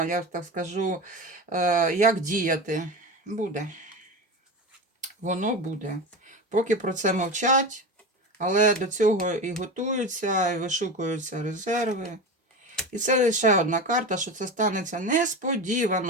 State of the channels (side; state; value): both; normal; correlation 0.25